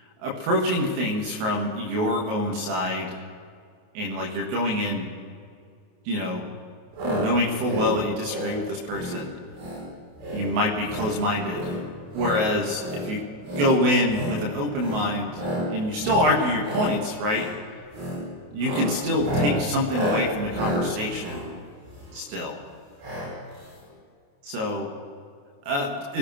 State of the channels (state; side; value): late; left; 28 ms